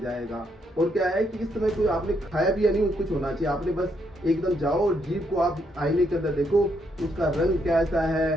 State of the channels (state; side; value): normal; both; correlation 0.75